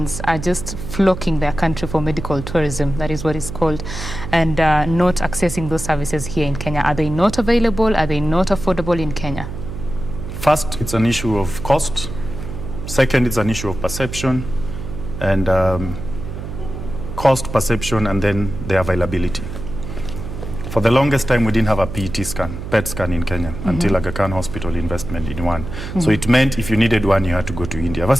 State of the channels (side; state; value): right; noise; hum, 8 dB below the sound